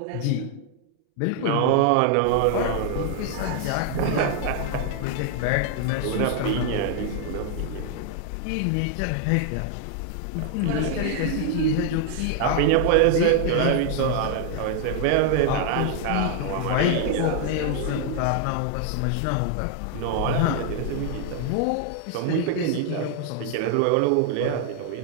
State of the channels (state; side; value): different; both; correlation 0.00